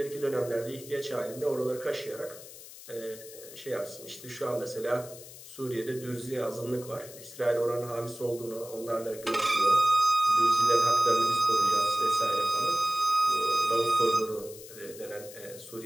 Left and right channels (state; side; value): noise; left; hiss, 16 dB below the sound